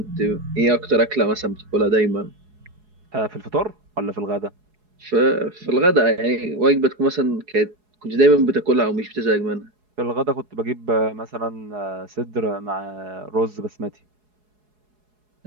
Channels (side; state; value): left; late; 4.7 ms